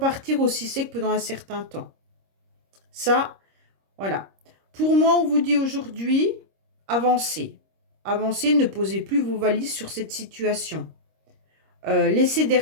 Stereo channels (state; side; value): late; left; 26 ms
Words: aussi sec pendant un certain temps. Ça, voilà. Pour moi, on vous dit aujourd'hui, avancez. Avancez, ne posez plus vos valises sur cette situation. Laissez